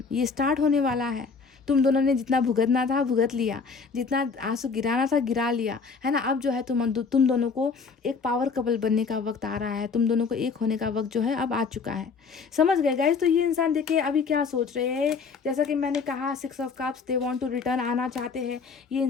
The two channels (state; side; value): quieter; right; 5.1 dB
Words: ये स्टार्ट होने वाला है। तुम दोनों ने जितना भुगतना था भुगत लिया, जितना आंसू गिराना था गिरा लिया, है ना। अब जो है तुम दोनों को एक पावर कपल बनने का वक्त आ रहा है, तुम दोनों को एक होने का वक्त जो है अब आ चुका है। समझ गए गाइस। तो ये इंसान देखिए अभी क्या सोच रहे हैं, जैसा कि मैंने कहा 6 of cups, they want to return, आना चाहते हैं। ये